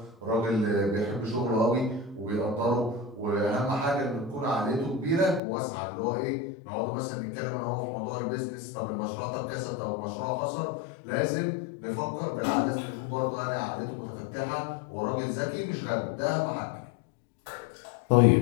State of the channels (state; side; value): drops out; right; at 5.4 s